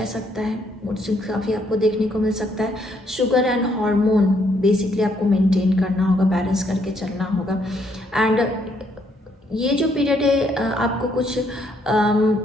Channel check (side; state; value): both; normal; correlation 0.71